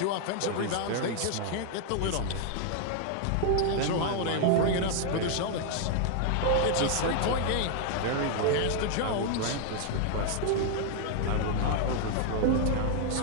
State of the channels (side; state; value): both; different; correlation 0.00